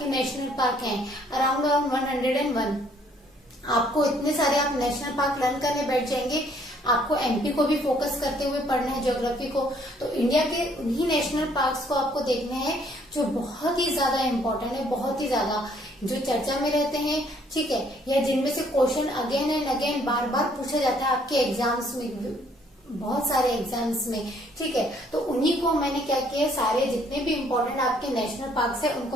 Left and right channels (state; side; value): normal; both; correlation 0.64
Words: नेशनल पार्क हैं, अराउंड 101। आपको इतने सारे आप नेशनल पार्क लर्न करने बैठ जाएंगे। आपको MP को भी फोकस करते हुए पढ़ना है ज्योग्राफी को। तो इंडिया के उन्हीं नेशनल पार्क्स को आपको देखने हैं जो बहुत ही ज्यादा इम्पोर्टेंट है, बहुत ही ज्यादा, जो चर्चा में रहते हैं, ठीक है, या जिनमें से क्वेश्चन अगेन एंड अगेन बार बार पूछा जाता है आपके एग्जाम्स में, बहुत सारे एग्जाम्स में, ठीक है। तो उन्हीं को मैंने क्या किया, सारे जितने भी इम्पोर्टेंट आपके नेशनल पार्क्स है